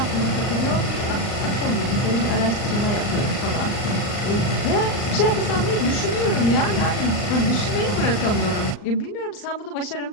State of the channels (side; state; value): right; late; 39 ms